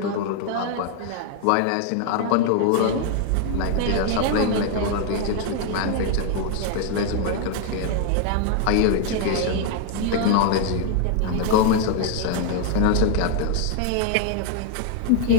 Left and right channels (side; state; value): both; different; correlation 0.00